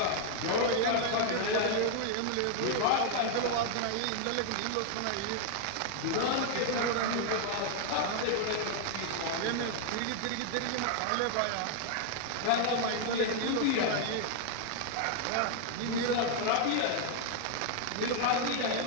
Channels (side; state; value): both; different; correlation 0.00